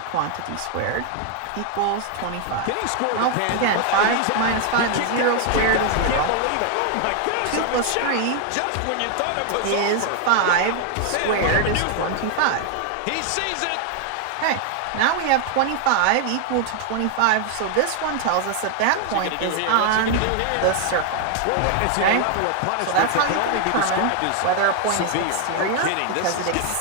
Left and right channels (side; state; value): both; different; correlation 0.00